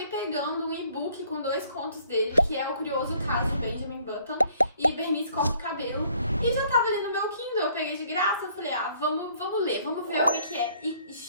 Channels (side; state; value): both; inverted; correlation -0.61